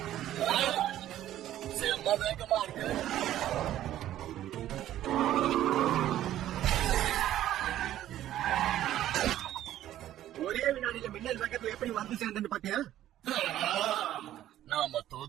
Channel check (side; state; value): left; quieter; 12.8 dB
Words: செம்ம வேகமா இருக்கு. ஒரே வினாடியில மின்னல் வேகத்துல எப்படி வந்து சேர்ந்துன்னு பாத்தியா? நாம